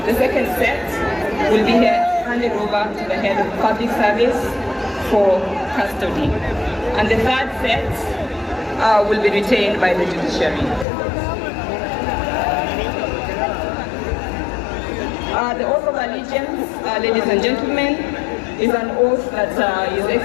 The second set will be handed over to the head of public service for custody. And the third set will be retained by the judiciary. The oath of allegiance, ladies and gentlemen, is an oath that His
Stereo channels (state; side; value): drops out; right; at 10.9 s